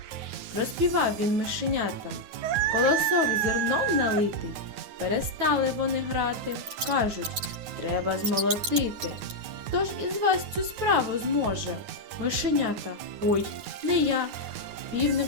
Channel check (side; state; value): left; late; 9.5 ms